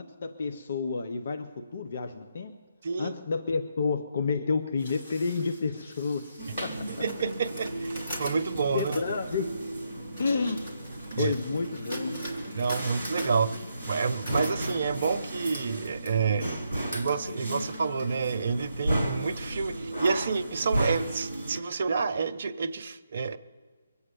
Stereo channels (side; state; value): both; inverted; correlation -0.79